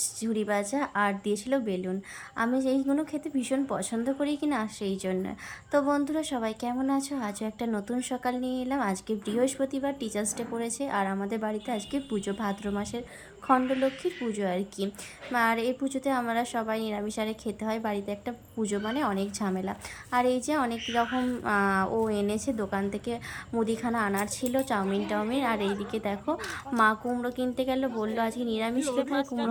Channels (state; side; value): identical; both; correlation 1.00